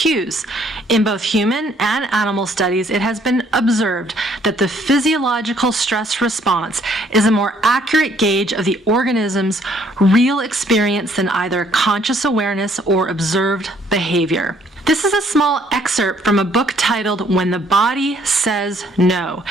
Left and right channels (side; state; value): both; normal; correlation 0.64